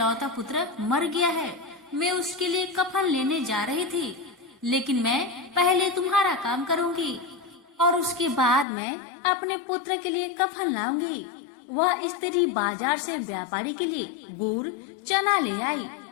पुत्र मर गया है, मैं उसके लिए कफन लेने जा रही थी, लेकिन मैं पहले तुम्हारा काम करूँगी और उसके बाद मैं अपने पुत्र के लिए कफन लाऊंगी। वह स्त्री बाजार से व्यापारी के लिए गुड़ चना ले आई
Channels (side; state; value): right; drops out; at 8.7 s